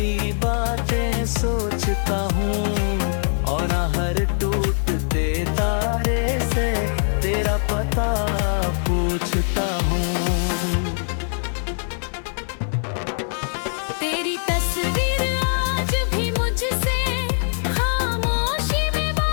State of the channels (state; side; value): silent; right; digital silence